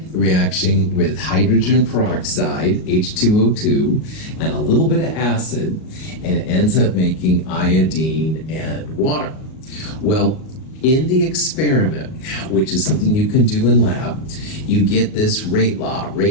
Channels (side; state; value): right; late; 38 ms